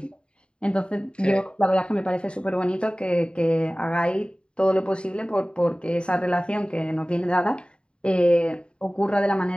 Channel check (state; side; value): late; right; 0.052 ms